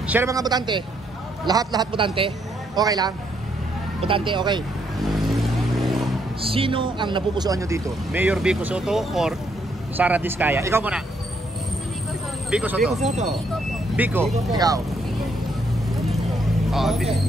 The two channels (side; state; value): both; normal; correlation 0.73